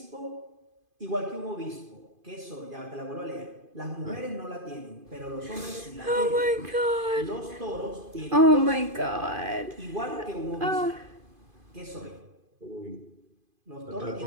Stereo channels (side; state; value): left; late; 2.5 ms